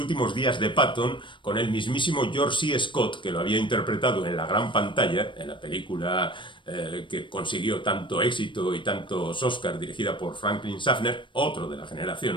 días de Patton con el mismísimo George C. Scott, que lo había interpretado en la gran pantalla, en la película que consiguió tanto éxito y tantos Oscars, dirigida por Franklin Schaffner, otro de la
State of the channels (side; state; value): right; late; 0.24 ms